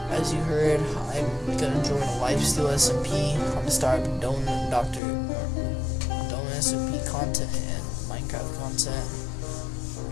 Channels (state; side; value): drops out; right; at 5.0 s